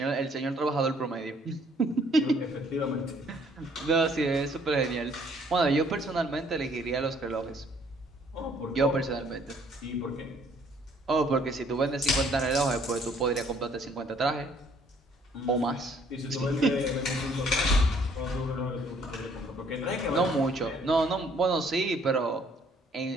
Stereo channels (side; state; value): both; normal; correlation 0.62